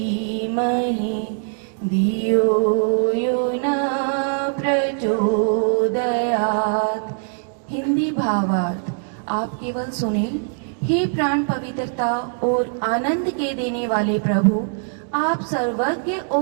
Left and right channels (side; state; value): left; silent; digital silence